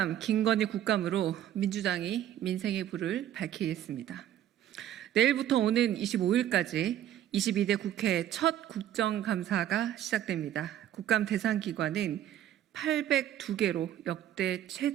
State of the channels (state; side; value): quieter; left; 11.5 dB